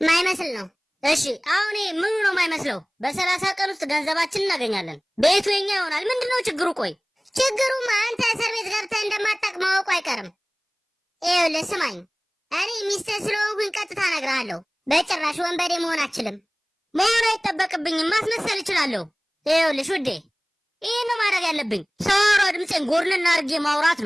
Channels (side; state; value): both; identical; correlation 1.00